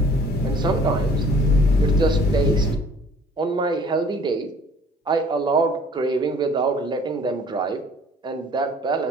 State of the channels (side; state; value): both; normal; correlation 0.53